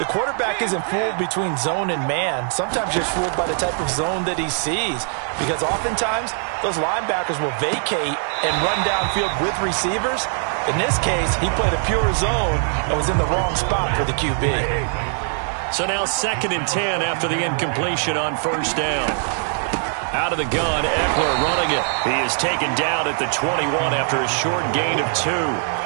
quarterback isn't fooled between zone and man. Sometimes just fooled by the type of zone that he sees. Because oftentimes, those linebackers will vacate and run downfield with receivers. In this case, he played a pure zone and was in the wrong spot for the QB. So now 2nd and 10 after the incompletion on first down. Out of the gun, Eckler running it. He is taken down at the 21 after a short gain of 2.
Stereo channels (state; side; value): silent; left; 56 dB below the other